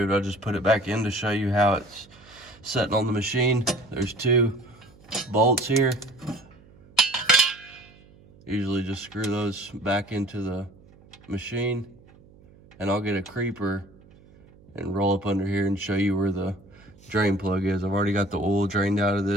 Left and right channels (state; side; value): noise; right; hum, 26 dB below the sound